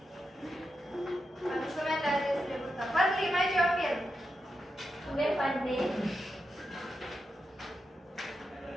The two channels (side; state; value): both; normal; correlation 0.87